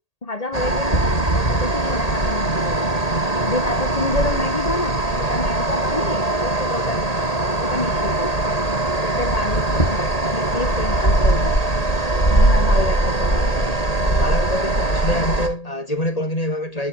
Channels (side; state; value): right; late; 1.8 ms